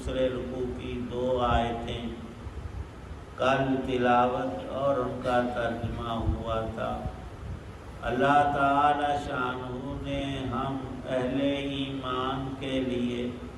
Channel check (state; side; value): identical; both; correlation 1.00